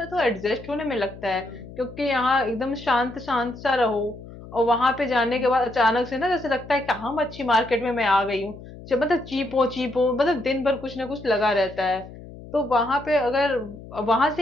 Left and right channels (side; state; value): left; noise; hum, 16 dB below the sound